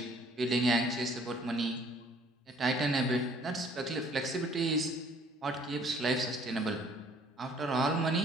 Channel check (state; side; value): normal; both; correlation 0.58